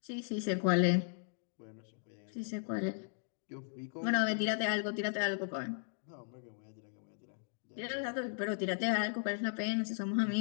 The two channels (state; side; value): silent; right; digital silence